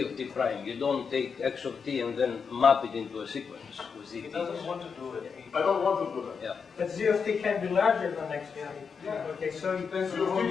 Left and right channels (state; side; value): quieter; right; 5.9 dB